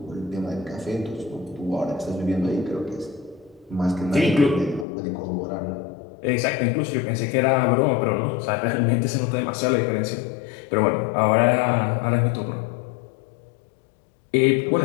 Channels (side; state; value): right; drops out; at 4.9 s